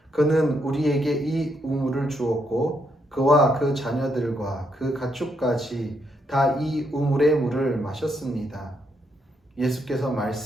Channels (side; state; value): both; normal; correlation 0.77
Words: 그는 우리에게 이 우물을 주었고 그와 그 자녀들과 그 가축까지 다 이 우물의 물을 마셨습니다. 예수께서